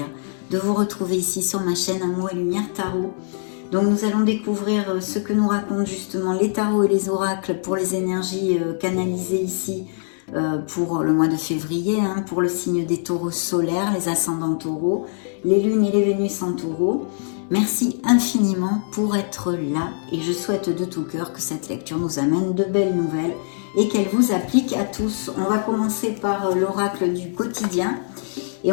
de vous retrouver ici sur ma chaîne Amour et Lumière Tarot. Donc nous allons découvrir ce que nous racontent justement les tarots et les oracles pour les énergies canalisées ici pour le mois de février, pour le signe des taureaux solaires, les ascendants taureaux, les lunes et les vénus en taureau. Merci infiniment pour être là et je souhaite de tout cœur que cette lecture nous amène de belles nouvelles et qu'elle vous applique à tous. On va commencer par l'oracle du quotidien et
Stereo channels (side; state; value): right; silent; digital silence